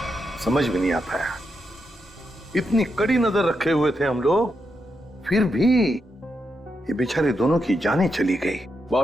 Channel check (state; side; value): normal; both; correlation 0.84